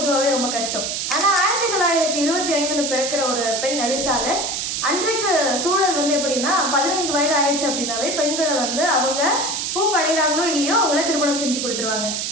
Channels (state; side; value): noise; right; hiss, 2 dB below the sound